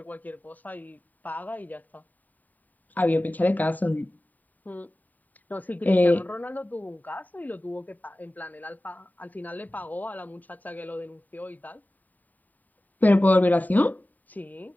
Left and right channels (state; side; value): late; right; 0.083 ms